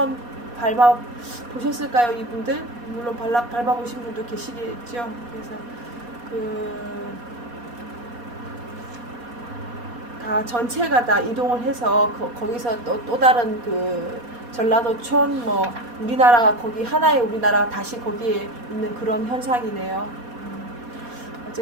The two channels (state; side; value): late; left; 4.2 ms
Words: 밟아 보셨을까요, 이분들? 물론 밟아 보신 분도 계시겠죠. 그래서 다 전체가 다 이동을 해서 거기서 또 다른 전라도촌 우리나라가 거기 하나의 우리나라가 다시 거기에 있는 그런 현상이네요.